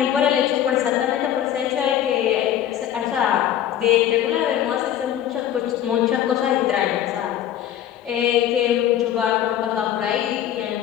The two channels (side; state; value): right; quieter; 11.0 dB